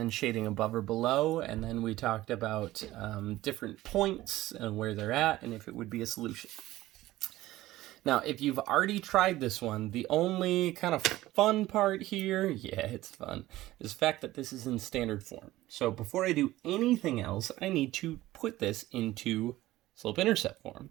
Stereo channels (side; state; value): left; quieter; 16.5 dB